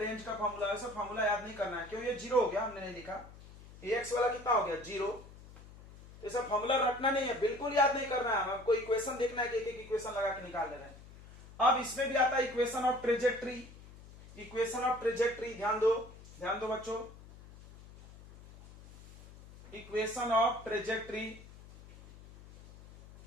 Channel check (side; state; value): left; noise; hum, 19 dB below the sound